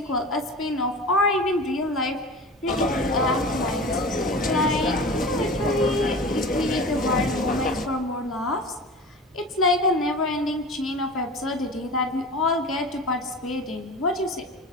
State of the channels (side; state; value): both; normal; correlation 0.34